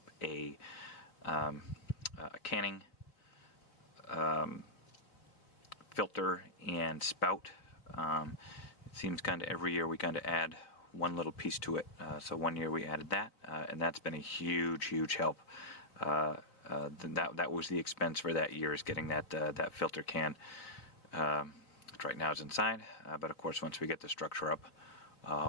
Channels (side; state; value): right; late; 4.3 ms